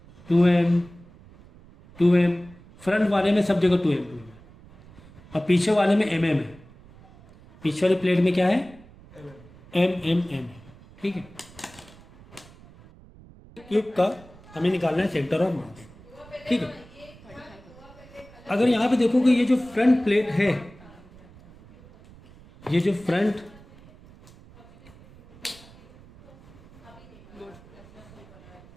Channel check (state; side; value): noise; right; rumble, 23 dB below the sound